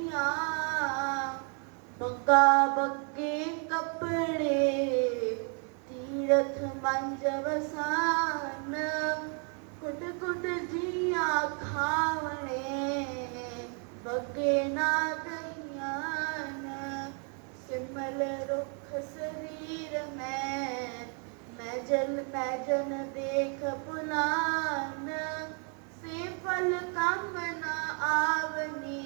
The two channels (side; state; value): left; quieter; 40.0 dB